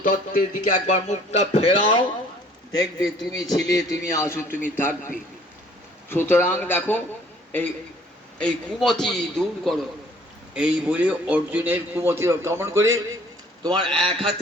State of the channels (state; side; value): normal; both; correlation 0.56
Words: দিকে একবার মুখটা ফেরাও, দেখবে তুমি ছিলে, তুমি আছো, তুমি থাকবে। সুতরাং দেখো, এই এই কুমতি দূর করো। এই বলে অর্জুনের কুমতি কেমন করে, তোমার এক